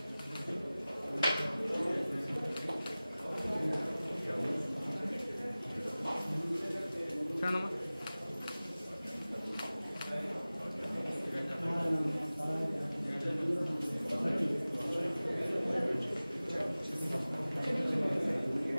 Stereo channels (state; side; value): inverted; both; correlation -0.98